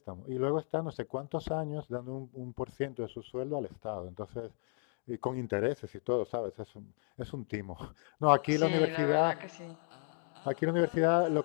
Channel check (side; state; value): right; silent; 55 dB below the other